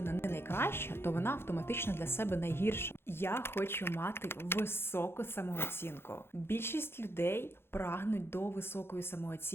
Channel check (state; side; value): late; right; 0.11 ms